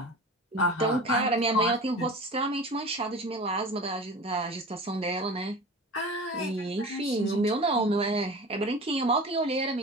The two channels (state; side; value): normal; both; correlation 0.35